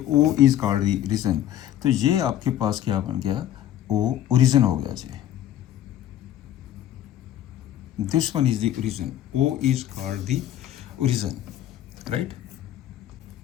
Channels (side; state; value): right; quieter; 12.0 dB